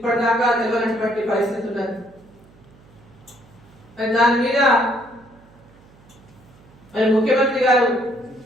తెలియనటువంటి పరిస్థితి ఉన్నది. దాని మీద మరి ముఖ్యమంత్రి గారు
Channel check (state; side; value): noise; right; hum, 27 dB below the sound